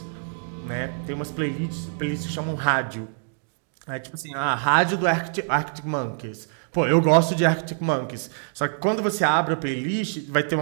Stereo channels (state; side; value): silent; left; 62 dB below the other